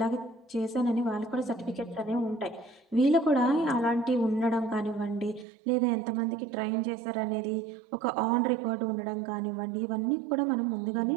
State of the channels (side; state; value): left; drops out; at 5.5 s